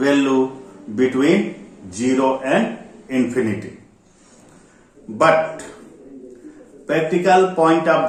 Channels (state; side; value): identical; both; correlation 1.00